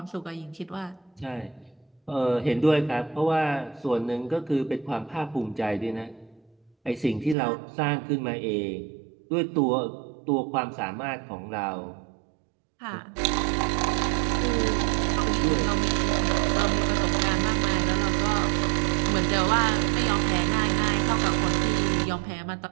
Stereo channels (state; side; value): drops out; left; at 7.4 s